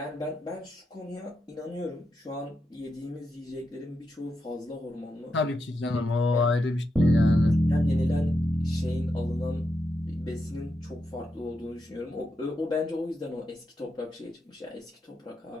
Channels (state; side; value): normal; both; correlation 0.85